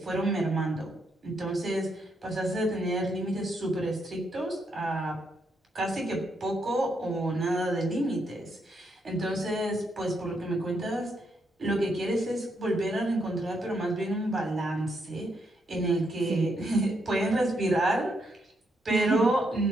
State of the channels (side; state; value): both; normal; correlation 0.78